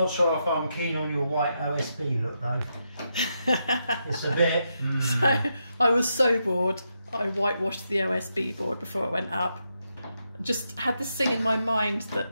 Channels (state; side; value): inverted; both; correlation -0.83